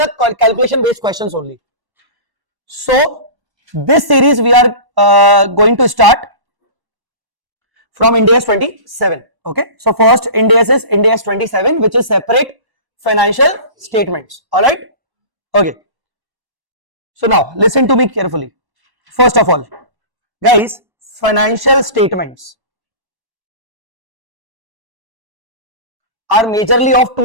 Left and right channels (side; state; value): left; late; 1.1 ms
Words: calculation based questions only. So this series we are going to start from Ind AS 27. Okay, so first Ind AS is Ind AS 27, which is separate financial statements. All right. Okay. So now listen to me carefully. First of all, guys, financial statements are majorly of